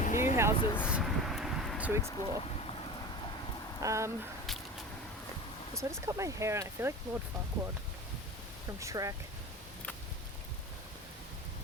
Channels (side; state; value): both; normal; correlation 0.32